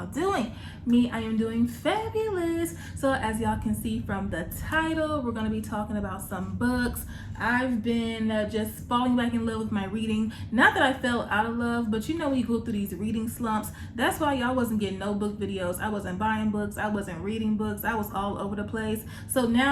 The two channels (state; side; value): identical; both; correlation 1.00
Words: doing? Me, I am doing fabulous. So as y'all can see from the title, we're going to be talking about some books. I've been just falling back in love with my reading. Not that I fell out of love, but you know when you go through these reading slumps, that's why y'all wasn't getting no book videos. I wasn't buying books. I wasn't reading books. I was all over the place. So